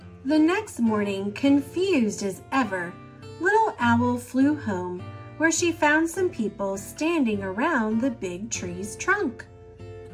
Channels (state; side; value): identical; both; correlation 1.00